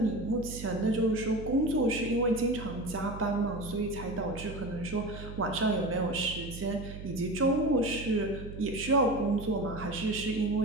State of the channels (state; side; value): noise; right; hum, 11 dB below the sound